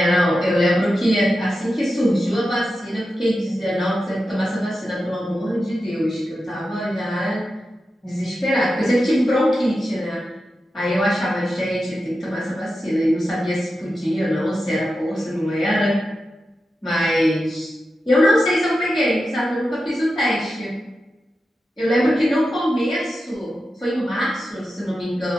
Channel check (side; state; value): both; normal; correlation 0.90